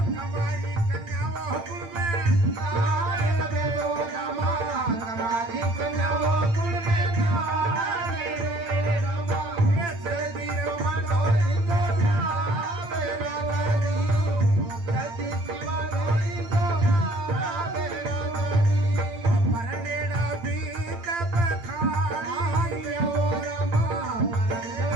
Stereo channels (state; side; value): late; left; 8.8 ms